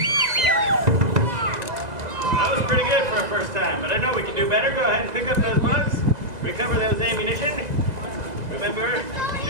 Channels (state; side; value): late; left; 2.0 ms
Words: That was pretty good for a first time, but I know we can do better. Go ahead and pick up those bugs. Recover those ammunition. Remember